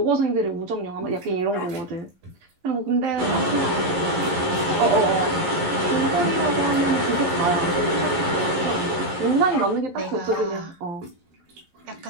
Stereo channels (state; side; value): late; left; 11 ms